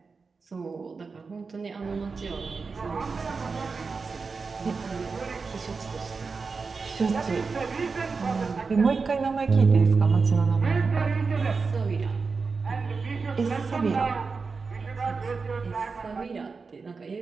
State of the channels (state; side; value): quieter; left; 4.6 dB